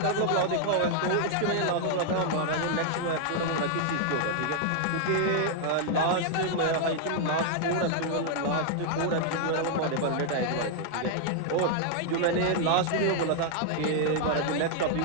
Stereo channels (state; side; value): different; both; correlation 0.00